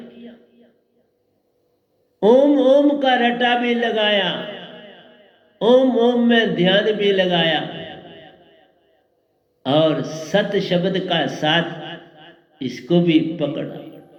ओम ओम का रटा भी लगाया, ओम ओम में ध्यान भी लगाया और सत शब्द का साथ इसको भी पकड़ा।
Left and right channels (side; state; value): both; identical; correlation 1.00